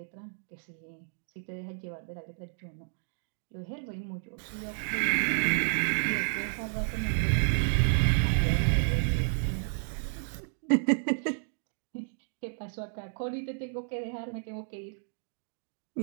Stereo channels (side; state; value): left; silent; digital silence